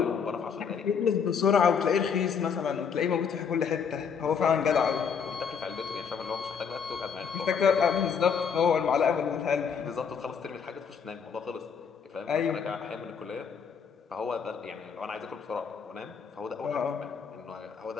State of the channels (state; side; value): quieter; right; 6.5 dB